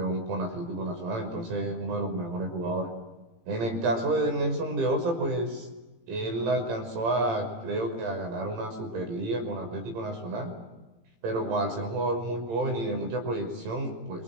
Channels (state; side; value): late; left; 18 ms